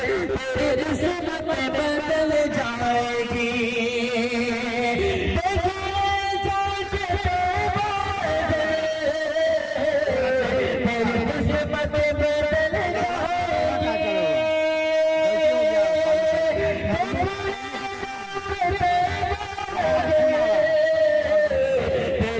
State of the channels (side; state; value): both; identical; correlation 1.00